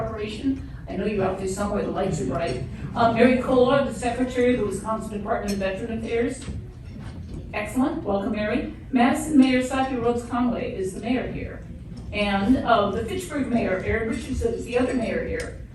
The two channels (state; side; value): identical; both; correlation 1.00